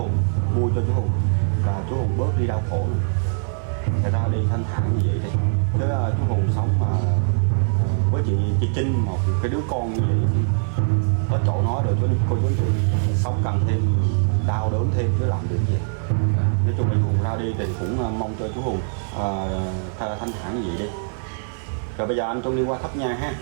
vui cho chú Hùng là chú Hùng bớt đi đau khổ, người ta đi thanh thản như vậy thì thứ chú Hùng sống mà với chị Trinh, một cái đứa con như vậy, nó chọn nó được cho cô chú sống cần thêm đau đớn thêm chứ làm được gì. Nói chung là Hùng ra đi thì cũng mong cho chú Hùng thanh thản như vậy đi. Rồi bây giờ anh Trung đi qua thắp nhang ha.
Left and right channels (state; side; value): silent; left; 62 dB below the other